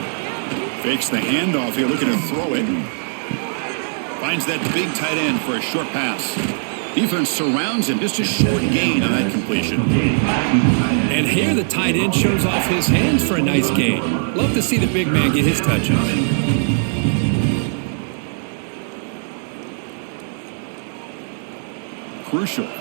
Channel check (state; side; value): silent; left; digital silence